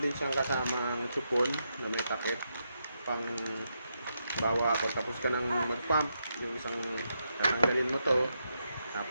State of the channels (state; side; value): inverted; both; correlation -0.83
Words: siyang kasamang chupon na may takip pang bawa pagtapos ka ng mag-pump, yung isang tatanggalin mo to,